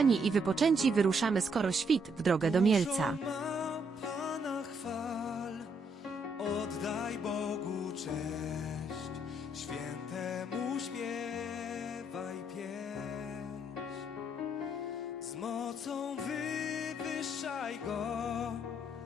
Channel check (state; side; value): normal; both; correlation 0.72